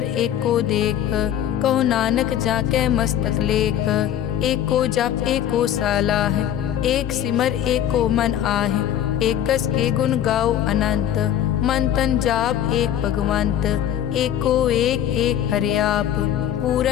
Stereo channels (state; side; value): quieter; right; 10.7 dB